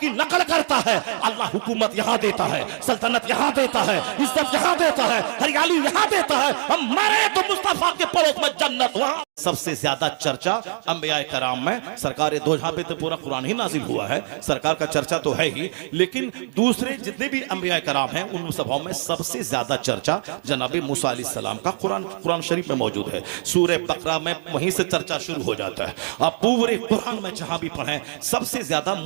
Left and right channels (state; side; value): silent; left; digital silence